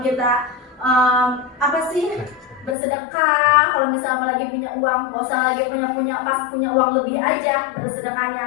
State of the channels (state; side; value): drops out; right; at 2.8 s